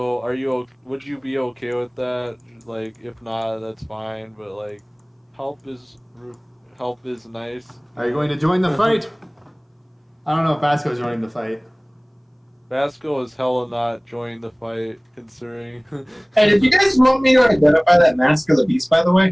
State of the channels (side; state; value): both; identical; correlation 1.00